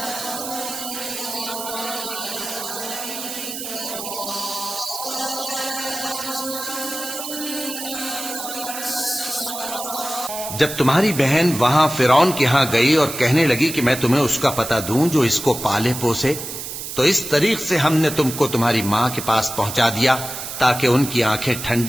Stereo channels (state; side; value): noise; right; hiss, 7 dB below the sound